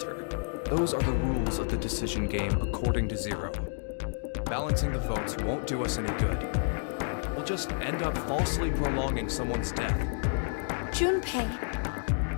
Those are the rules of the decision game according to Zero. Balancing the votes won't do us any good. We'll just end up falsely prolonging someone's death. Junpei.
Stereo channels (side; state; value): right; silent; digital silence